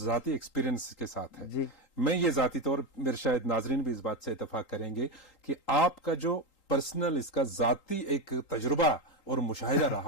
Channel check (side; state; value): right; late; 3.8 ms